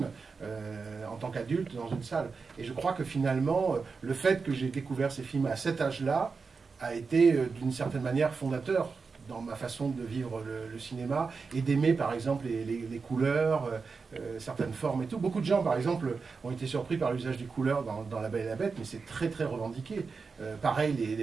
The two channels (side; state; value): left; quieter; 4.8 dB